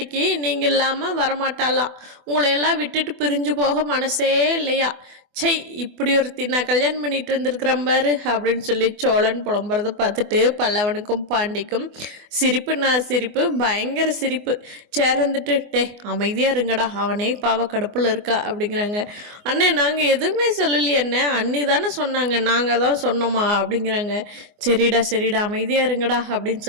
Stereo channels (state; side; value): late; left; 24 ms